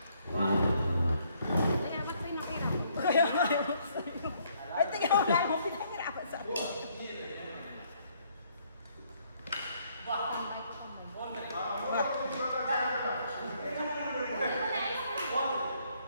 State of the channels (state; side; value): inverted; both; correlation -0.68